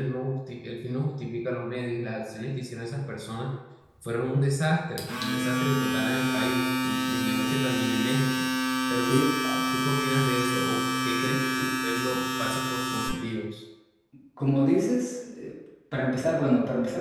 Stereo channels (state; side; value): identical; both; correlation 1.00